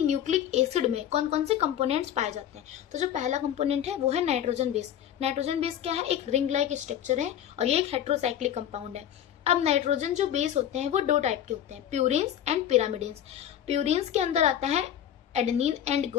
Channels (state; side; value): quieter; right; 10.3 dB